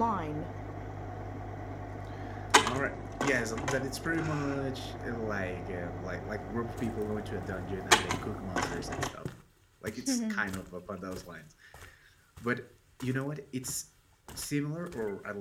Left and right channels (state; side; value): identical; both; correlation 1.00